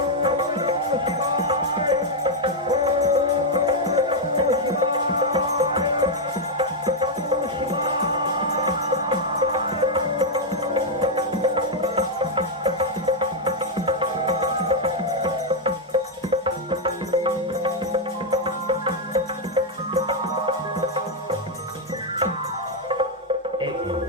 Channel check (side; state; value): both; normal; correlation -0.01